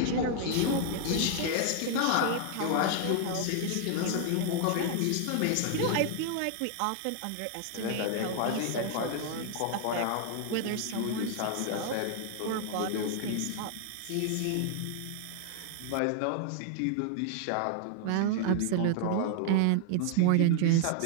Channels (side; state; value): both; different; correlation 0.00